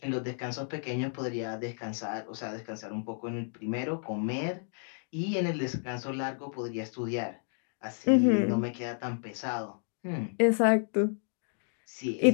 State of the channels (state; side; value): silent; right; 57 dB below the other